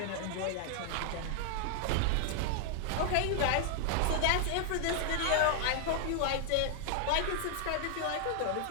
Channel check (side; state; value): both; different; correlation 0.00